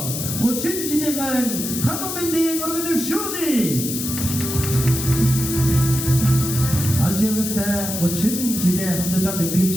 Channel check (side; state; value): left; noise; hiss, 4 dB below the sound